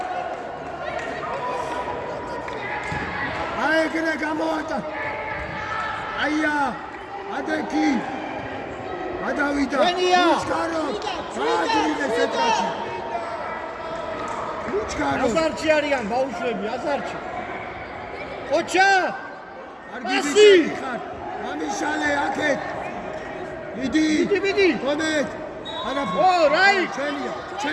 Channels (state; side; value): identical; both; correlation 1.00